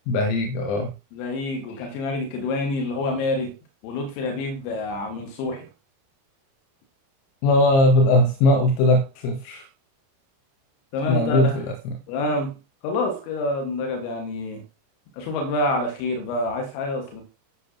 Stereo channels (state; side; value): late; right; 29 ms